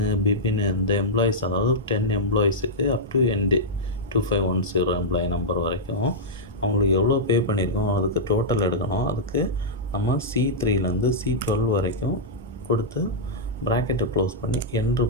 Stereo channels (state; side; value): normal; both; correlation -0.09